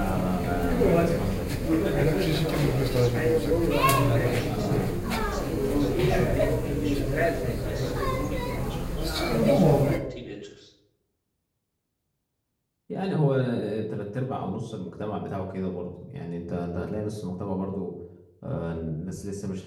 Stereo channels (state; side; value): identical; both; correlation 1.00